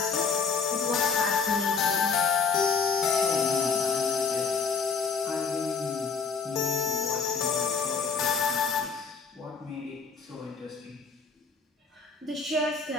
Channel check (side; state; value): right; quieter; 5.4 dB